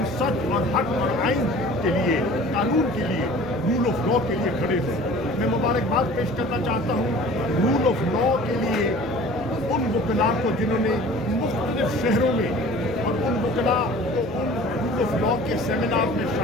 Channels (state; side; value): noise; right; rumble, 18 dB below the sound